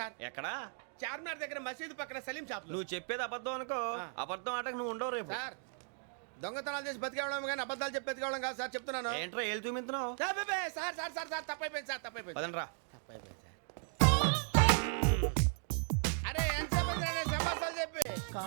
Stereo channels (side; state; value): left; silent; 53 dB below the other